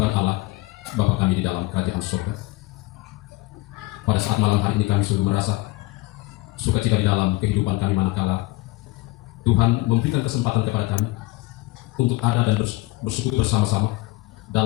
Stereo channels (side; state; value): right; quieter; 20.9 dB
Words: Allah, Bapa kami di dalam kerajaan surga, pada saat malam hari ini kami sungguh merasa sukacita di dalam kehidupan kami manakala Tuhan memberikan kesempatan kepada kami untuk ada dan bersekutu bersama-sama